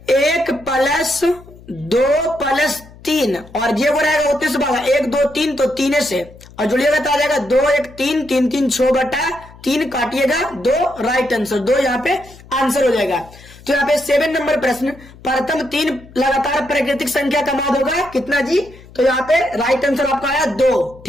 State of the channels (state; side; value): noise; left; hum, 22 dB below the sound